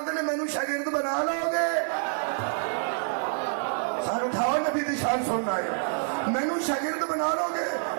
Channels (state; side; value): silent; left; 60 dB below the other